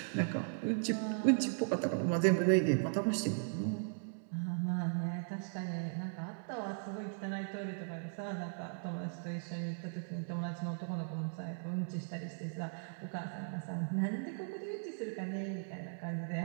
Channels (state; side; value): silent; left; digital silence